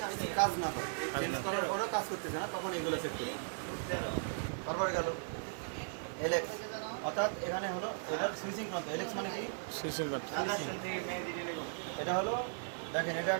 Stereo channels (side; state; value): left; silent; 53 dB below the other